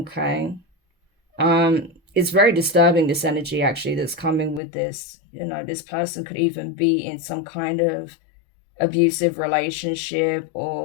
It's very disturbing, this energy actually that's coming with this. You know, this person could even be in some kind of abusive relationship,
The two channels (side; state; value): right; drops out; at 4.6 s